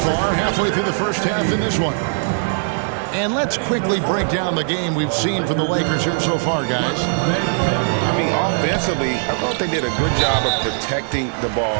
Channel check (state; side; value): silent; left; 66 dB below the other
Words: Halfway through the first half in this one. And let's quickly break down the game we've seen from the Lakers here so far, guys. I mean, offensively, I thought they did a good job of protecting the